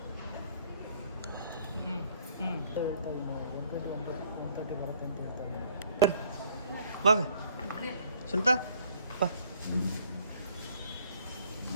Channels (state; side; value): inverted; both; correlation -0.61